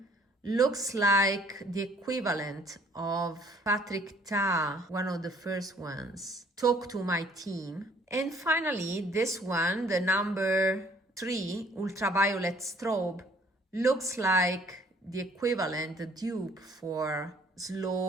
looks like the equivalent of Patrick Ta, one of the first ones, Talk to My Team. And finally, this one, the number 3 ultraviolet strobe, looks like the equivalent, the dupe for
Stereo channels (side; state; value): both; normal; correlation 0.59